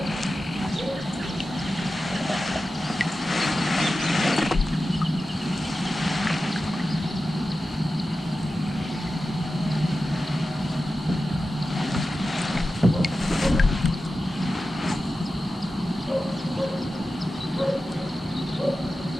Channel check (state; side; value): normal; both; correlation 0.93